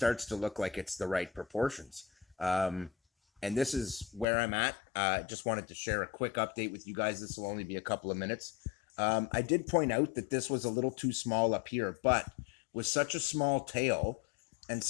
to look like it's the right proportions. And this is where I'm at. Just wanted to share a quick update with you guys. This will only be a couple of minutes. I did point out that this was a little too small up here, but with such a small tail and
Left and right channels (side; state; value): right; drops out; at 4.2 s